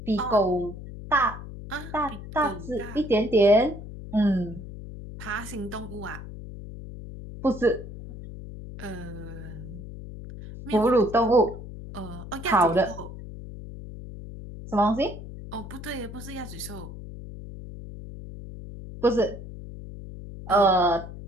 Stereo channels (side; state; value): left; noise; hum, 12 dB below the sound